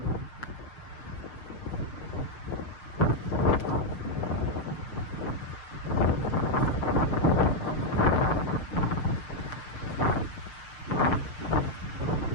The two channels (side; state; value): right; late; 6.7 ms